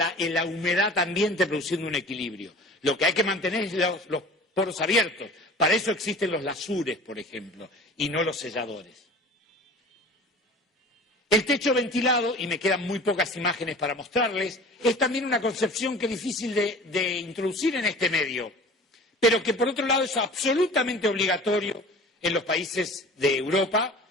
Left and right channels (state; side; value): normal; both; correlation 0.41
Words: humedad ambiente produciendo un equilibrio. Lo que hay que mantener es los poros abiertos. Para eso existen los lasures, por ejemplo, y no los selladores. El techo ventilado, y me quedan muy pocas imágenes para mostrarles, es también una concepción que es difícil de introducir en este medio, pero que por otro lado es absolutamente obligatorio en los países de Europa,